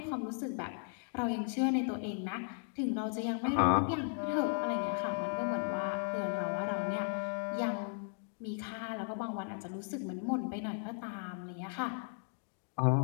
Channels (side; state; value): right; silent; 54 dB below the other